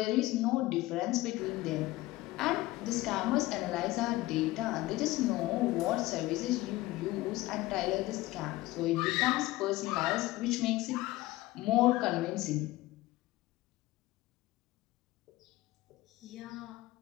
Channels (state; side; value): quieter; right; 18.2 dB